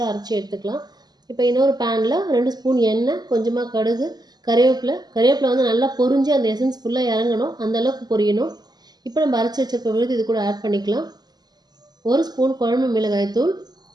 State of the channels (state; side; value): late; left; 0.20 ms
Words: அரைச்சி எடுத்துக்கலாம். இப்போ இன்னொரு பேனில் 2 ஸ்பூன் எண்ணெய், கொஞ்சமாக கடுகு, கருவேப்பிலை நல்லா பொரிஞ்சு அந்த எசன்ஸ் ஃபுல்லாக இறங்கணும், அந்தளவுக்கு பொரியணும். இப்போ நம்ம அரைச்சி வச்சிருக்க விழுது இது கூட ஆட் பண்ணிக்கலாம். 1 ஸ்பூன் குழம்பு மிளகாய்த்தூள்,